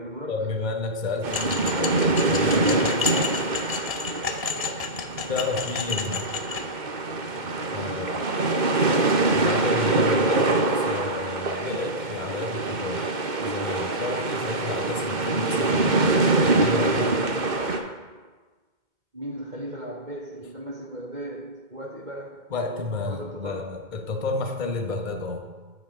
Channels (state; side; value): late; left; 2.1 ms